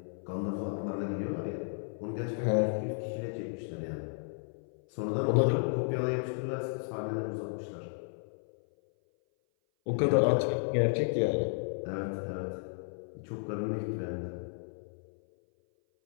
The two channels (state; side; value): silent; right; 56 dB below the other